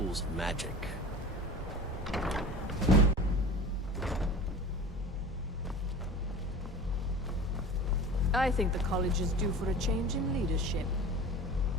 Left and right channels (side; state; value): both; normal; correlation 0.37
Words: of magic. I think the college is due for a change in leadership.